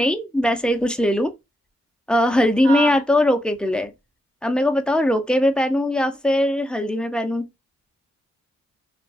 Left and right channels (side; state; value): both; normal; correlation 0.84